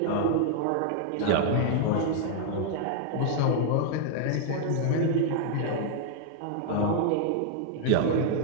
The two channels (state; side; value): different; both; correlation -0.01